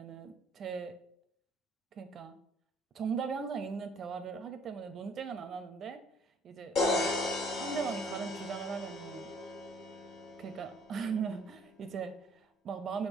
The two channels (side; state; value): both; normal; correlation 0.59